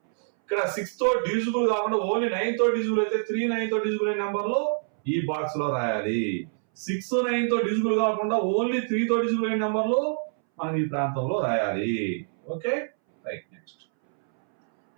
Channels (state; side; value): silent; left; 61 dB below the other